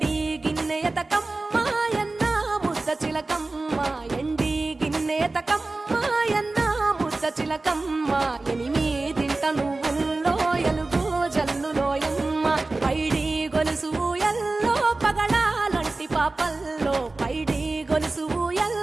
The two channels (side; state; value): left; quieter; 3.3 dB